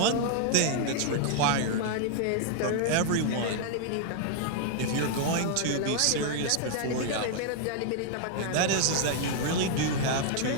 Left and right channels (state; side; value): different; both; correlation 0.00